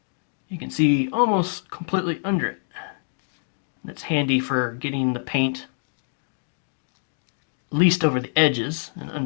almost completely under it. That's handy for getting the paint at least over the edges and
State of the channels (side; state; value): right; silent; 61 dB below the other